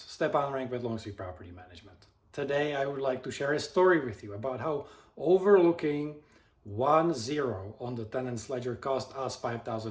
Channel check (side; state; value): both; identical; correlation 1.00